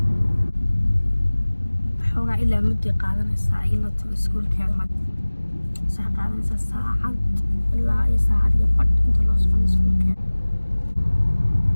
xogaa ilaa muddo qaadanaysa ila tago iskuulkeeda sax qaadanaysa saacad ilaa iyo saacad iyo badh inta loo socon iskuulkeeda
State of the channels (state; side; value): inverted; both; correlation -1.00